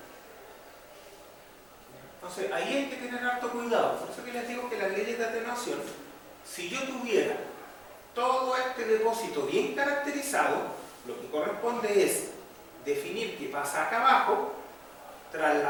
Entonces, ahí hay que tener harto cuidado. Por eso que les digo que las leyes de atenuación, si yo tuviera todo este depósito bien caracterizado, lo que corresponde es definir qué pasa acá abajo,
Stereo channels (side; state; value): right; noise; rumble, 29 dB below the sound